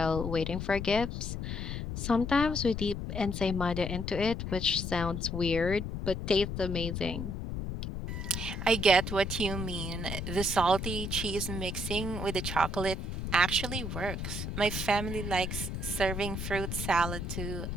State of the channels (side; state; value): left; noise; rumble, 4 dB below the sound